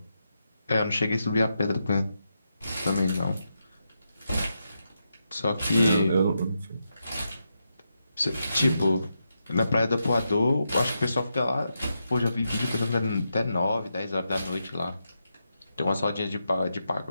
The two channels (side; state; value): both; inverted; correlation -0.85